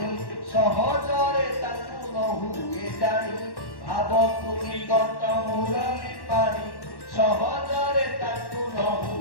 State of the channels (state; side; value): late; right; 1.1 ms